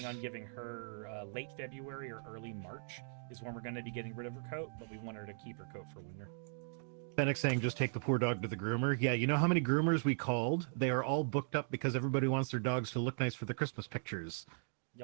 on giving her late February or early March is when we're going to be getting rid of her coat, but we want her to keep her coat for winter. Fennec saying, just take the poor dog to the groomer. Yeah, you know how many groomers we called? They are all booked up because everybody wants their dogs to look nice for the Christmas pictures.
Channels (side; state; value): left; silent; digital silence